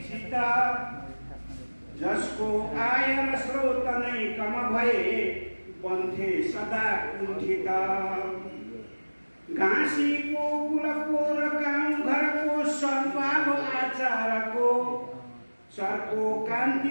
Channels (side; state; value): both; inverted; correlation -1.00